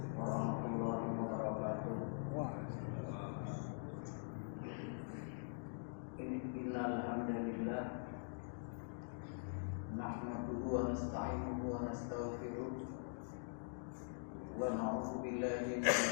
warahmatullahi wabarakatuh. Innal hamdalillah nahmaduhu wa nasta'inuhu wa nastaghfiruh wa na'udzu billahi min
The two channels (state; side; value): silent; right; digital silence